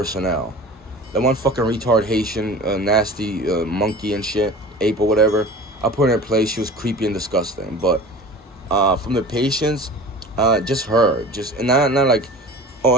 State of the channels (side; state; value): both; normal; correlation 0.38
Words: That one fucking retard Haitian, nasty monkey and shit, ape or whatever, I put her in place. She was creepy and disgusting. But from the patients, just her. And not like, oh,